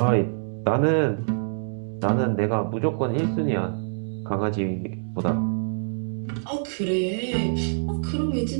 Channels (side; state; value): left; silent; digital silence